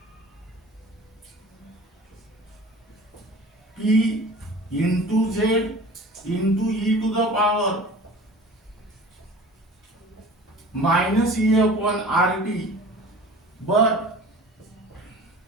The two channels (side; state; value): both; normal; correlation 0.41